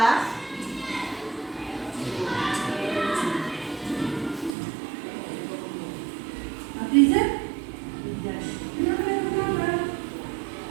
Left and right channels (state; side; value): drops out; left; at 4.5 s